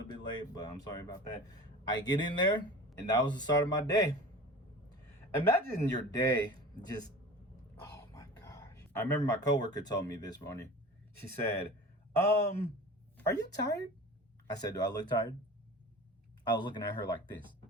bit late, but I'm sorry about that. I get in there and that was the start of my day. Imagine your day just, oh my gosh. I remember my coworker told me this morning. She said, are you tired? I said, do I look tired? I was looking at her like this.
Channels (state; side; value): normal; both; correlation 0.37